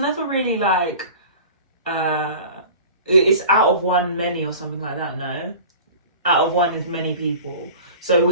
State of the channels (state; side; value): inverted; both; correlation -0.40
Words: really like it's out of one many or something like that. No, out of one is many people. So